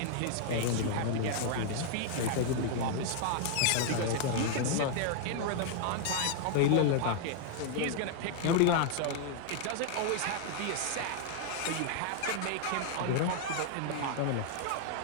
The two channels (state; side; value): different; both; correlation 0.00